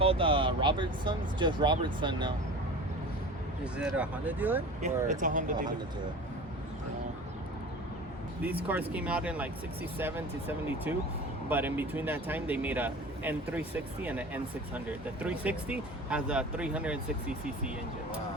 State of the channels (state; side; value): normal; both; correlation 0.37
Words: Robertson's, just Robertson now. Is it a Honda dealer? Yeah, it's a Honda dealer. dealer. These cars came out in like 67 to 72, but in between that time they made a N360 and an N600. The 360 has a 360cc engine.